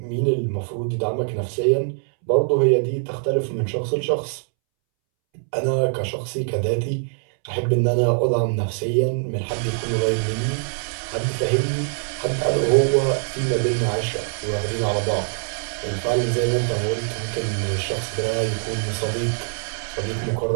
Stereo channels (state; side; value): silent; left; 63 dB below the other